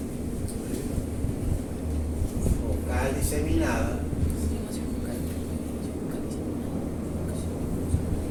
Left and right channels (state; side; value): identical; both; correlation 1.00